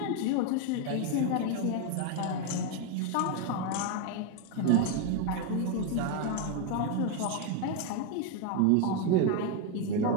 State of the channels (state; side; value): different; both; correlation 0.01